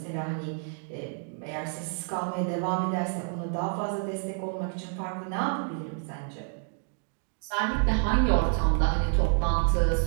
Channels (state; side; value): silent; left; 59 dB below the other